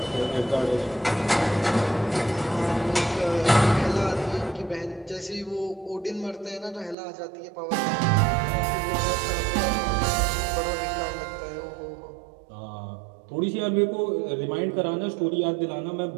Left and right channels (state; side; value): drops out; left; at 7.0 s